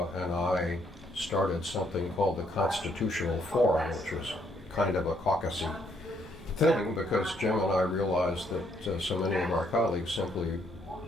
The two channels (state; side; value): normal; both; correlation 0.71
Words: and I started something called the Constitutional Forum, which was kind of a caucusy thing, because Jim and I realized that so many of our colleagues simply